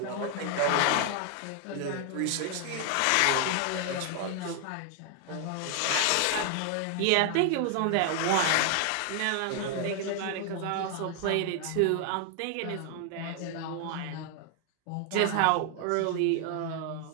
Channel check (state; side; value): different; both; correlation 0.00